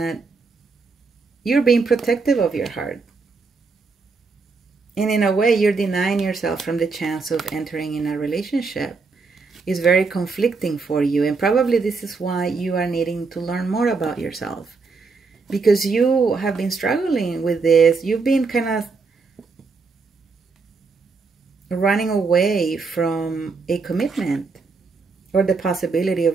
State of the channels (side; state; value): left; quieter; 4.4 dB